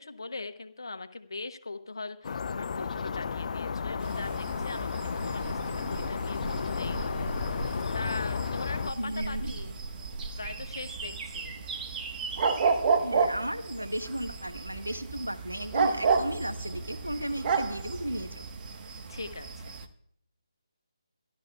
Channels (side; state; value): both; inverted; correlation -0.70